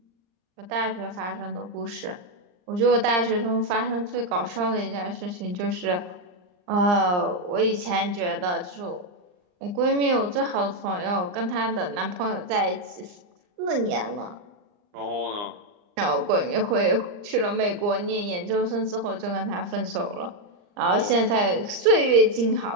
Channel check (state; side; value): late; left; 39 ms